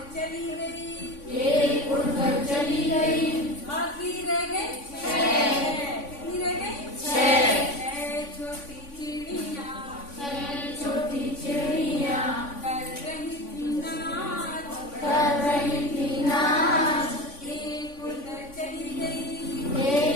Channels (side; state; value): right; late; 3.5 ms